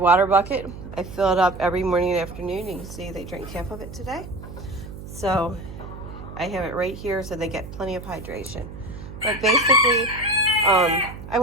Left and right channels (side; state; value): right; noise; hum, 12 dB below the sound